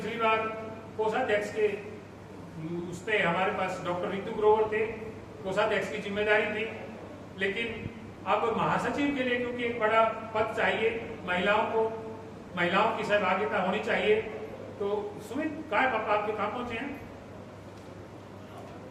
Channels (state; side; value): identical; both; correlation 1.00